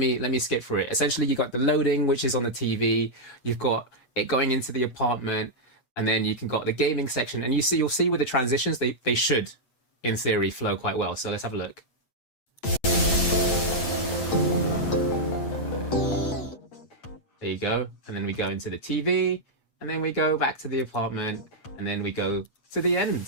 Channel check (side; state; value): right; late; 8.4 ms